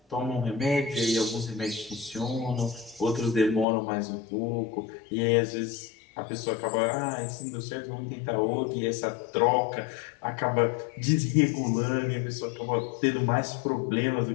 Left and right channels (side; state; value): right; drops out; at 3.7 s